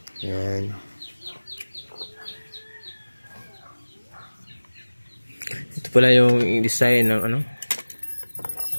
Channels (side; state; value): both; inverted; correlation -1.00